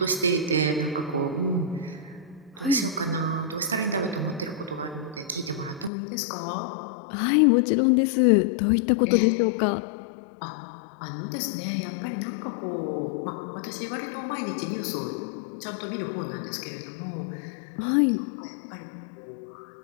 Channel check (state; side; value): drops out; right; at 5.9 s